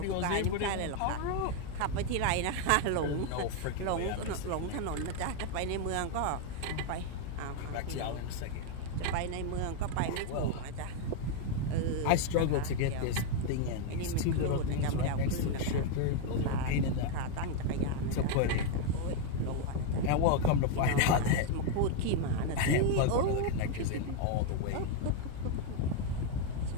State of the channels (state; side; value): different; both; correlation 0.01